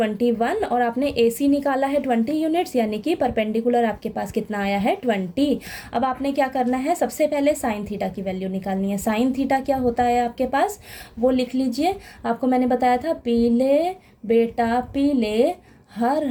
और आपने ए सी निकाला है 20 यूनिट्स यानी कि परपेंडिकुलर आपके पास कितना आया है 20। अब आपने क्या करना है, सबसे पहले साइन थीटा की वैल्यू निकालनी है। साइन थीटा क्या होता है आपके पास, वो लिख लीजिए। आपको मैंने बताया था पीले बेटा पीले हर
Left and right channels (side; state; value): both; identical; correlation 1.00